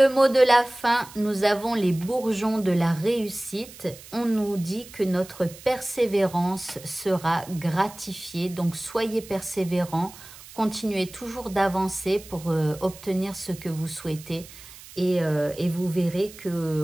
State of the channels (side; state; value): right; noise; hiss, 18 dB below the sound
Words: mot de la fin, nous avons les bourgeons de la réussite. On nous dit que notre persévérance sera gratifiée. Donc, soyez persévérants, continuez toujours d'avancer pour obtenir ce que vous souhaitez. Et vous verrez